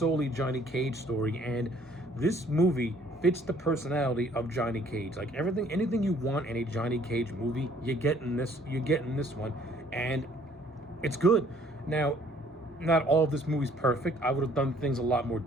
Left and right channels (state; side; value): normal; both; correlation 0.59